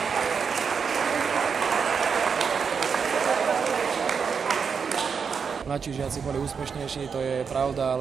Mladší žiaci boli úspešnejší, to je pravda,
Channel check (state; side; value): quieter; left; 6.1 dB